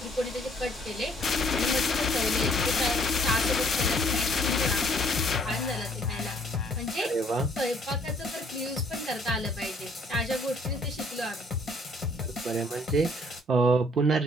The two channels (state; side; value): normal; both; correlation 0.63